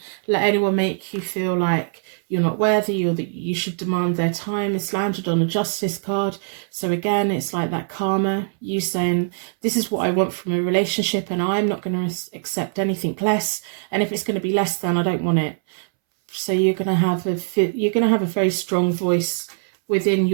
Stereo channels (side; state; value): left; silent; 64 dB below the other